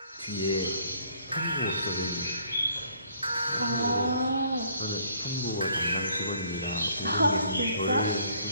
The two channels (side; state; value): both; inverted; correlation -0.62